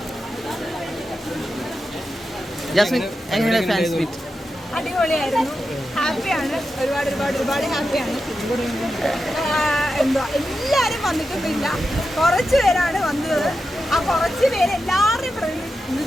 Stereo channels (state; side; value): normal; both; correlation 0.89